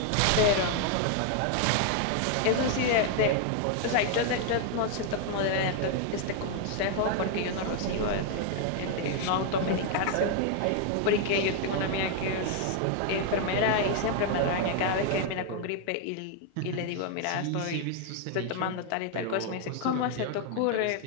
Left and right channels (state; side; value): different; both; correlation 0.00